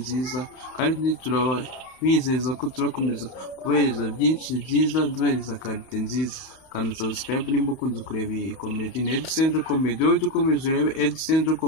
kandi turabizeza ko turakomeza kubahereza byinshi byiza, duhereza karite nziza. Kanda subscribe nimba ukunze kureba iyi komedi, ni Edcentre Comedy. wowe ujye ukomeza urebe Edcentre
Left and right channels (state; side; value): late; right; 31 ms